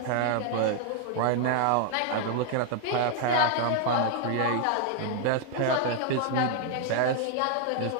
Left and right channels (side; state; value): both; different; correlation 0.00